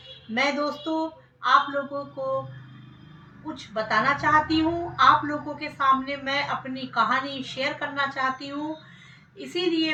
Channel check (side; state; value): both; identical; correlation 1.00